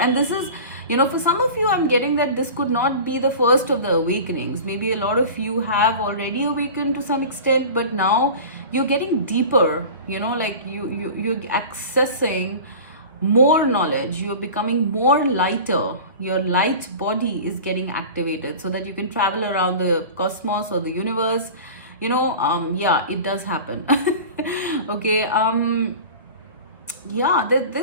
this is, you know, for some of you, I'm getting that this could not be the first of the awakenings. Maybe a lot of you have already awakened to some extent, but now you're getting deeper, you know, like you're accessing more knowledge. You're becoming more lighter. Your light body is getting activated so that you can travel around the cosmos or the universe. You know, yeah, it does happen. Okay, yeah,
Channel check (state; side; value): inverted; both; correlation -0.36